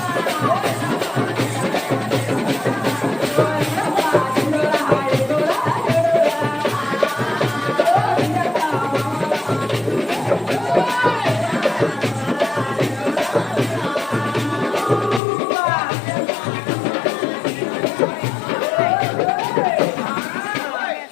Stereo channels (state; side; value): drops out; right; at 15.2 s